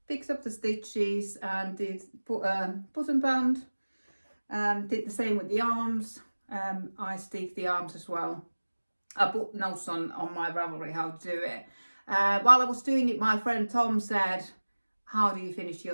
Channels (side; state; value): both; inverted; correlation -1.00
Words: fixed up the stitches, and did put button band, and did the same with the arms. I stick the arms as well. I put notes on my Ravelry how to do it. While I was doing it, my friend Tom said, how do you finish